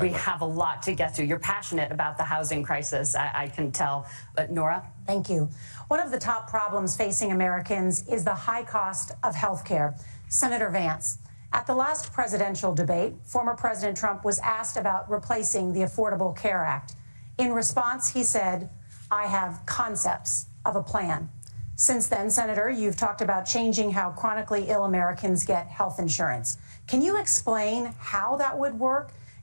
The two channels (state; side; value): inverted; both; correlation -1.00